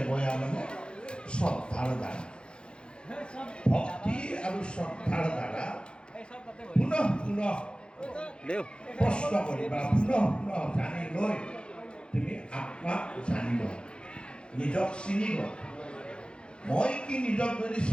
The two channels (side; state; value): right; late; 0.054 ms